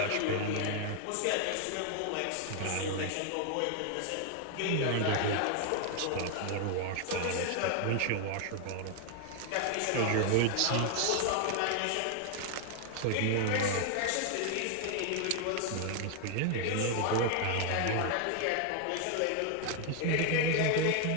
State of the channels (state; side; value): different; both; correlation 0.00